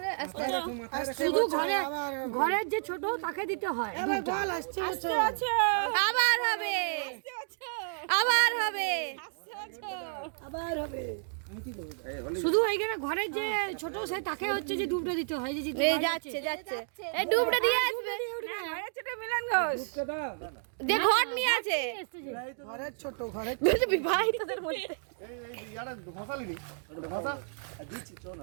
আস্তে আস্তে। শুধু ঘরের যে ছোট তাকে দিতে হয়। আবার হবে, আবার হবে, আবার হবে। শুধু এইখানে ঘরের যে ছোট সে তাকে হচ্ছে যে ডুবটা দিতে হয়। যে এই যাচ্ছে যাচ্ছে, এই ডুবটা দিয়ে আসবে। মিলন ঘোষ যে ঘট নিয়ে আছে ঘরের ছোট ঘরের বিবাহিতদের মধ্যে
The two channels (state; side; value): silent; left; digital silence